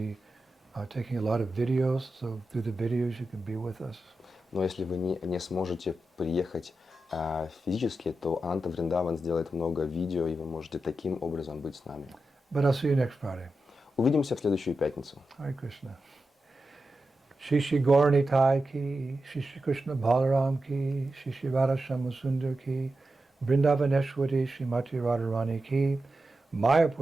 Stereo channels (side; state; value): both; normal; correlation 0.90